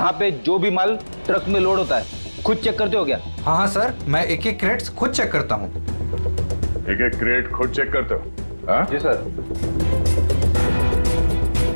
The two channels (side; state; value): both; inverted; correlation -1.00